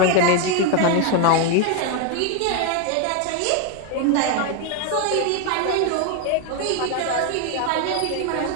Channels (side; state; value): both; different; correlation 0.01